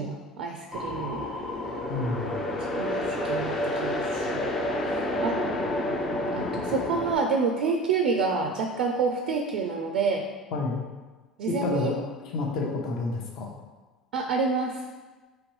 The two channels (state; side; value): normal; both; correlation 0.36